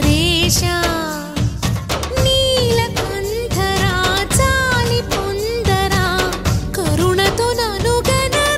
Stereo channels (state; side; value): identical; both; correlation 1.00